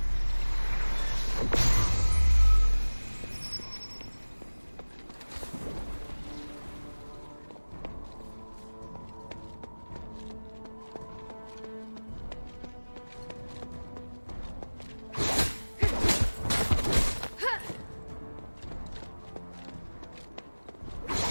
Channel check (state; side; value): inverted; both; correlation -1.00